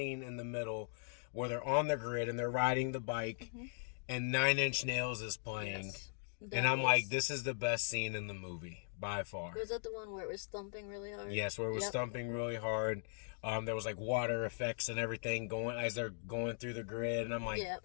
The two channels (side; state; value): right; silent; digital silence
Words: in the middle where they're on the grid and they're riding the bike. Mm-hmm. And 9 Inch Nails is playing. Yes, and I'm like, this is the best scene in the movie, by far. Was that the one where it was thumping really hard? Yes, where it was thumping really hard. There was like water effects and everything going as they're going through the grid. And I'm like,